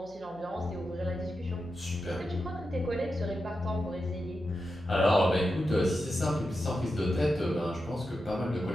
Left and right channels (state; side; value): noise; right; hum, 24 dB below the sound